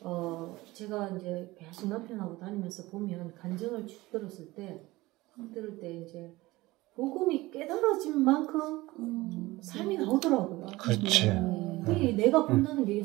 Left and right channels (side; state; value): left; quieter; 19.7 dB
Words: 제가 이제 계속 남편하고 다니면서 보면 간증을 쭉 들을 때 이제 복음이 깨달아진 만큼 삶이 나오더라고요. 그렇지. 내가 본다는 게